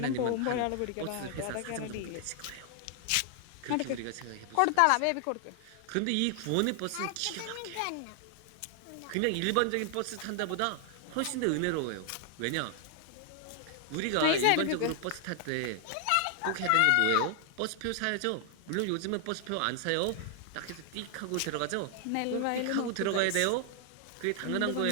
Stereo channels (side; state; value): both; different; correlation 0.00